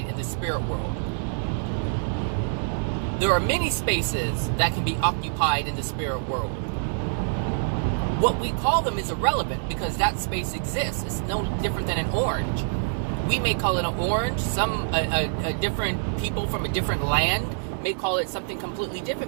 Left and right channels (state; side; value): silent; left; digital silence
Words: in the spirit world. There are many spaces that can be occupied in the spirit world. What we call them is irrelevant, because that space exists. It's no different than an orange. We may call it an orange. A different people from a different land may call it something completely